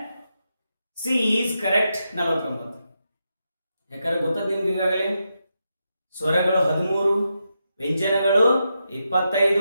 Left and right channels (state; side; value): inverted; both; correlation -0.85